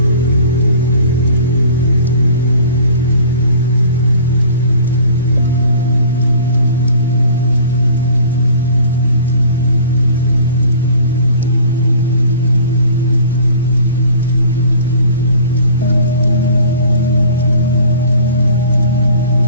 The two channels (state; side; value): inverted; both; correlation -0.47